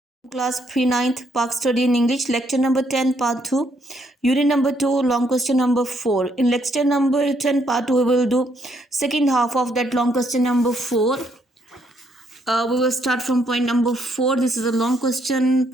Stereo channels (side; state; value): both; normal; correlation 0.72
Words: Class 3 9th Park Study in English, lecture number 10 part 2, unit number 2, long question number 4. In lecture number 10 part 2 we will do second half of that long question number 4. We will start from point number 4. This is a long question,